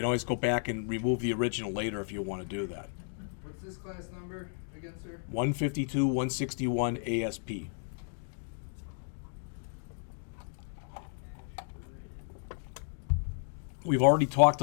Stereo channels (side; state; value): right; silent; digital silence